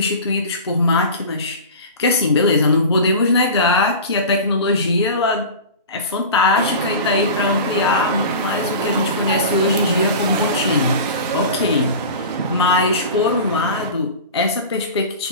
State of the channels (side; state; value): both; inverted; correlation -0.33